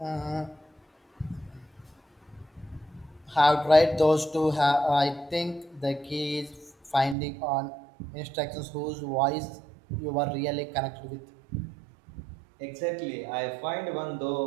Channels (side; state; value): left; drops out; at 7.2 s